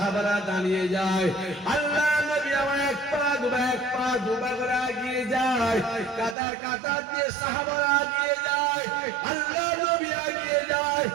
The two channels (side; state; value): left; drops out; at 6.4 s